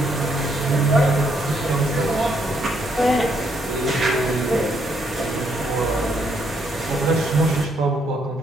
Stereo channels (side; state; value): both; normal; correlation 0.73